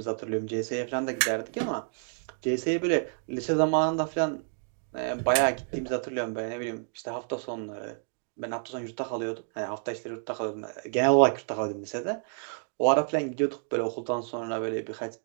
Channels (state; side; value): silent; left; 58 dB below the other